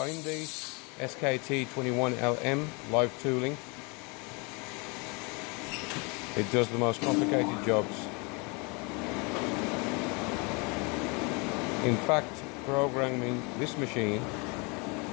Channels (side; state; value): right; quieter; 30.5 dB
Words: SKT21LM live tooling. It does the most complicated jobs. In fact, programming this machine,